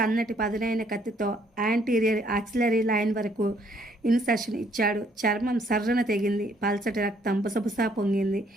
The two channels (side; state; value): both; normal; correlation 0.65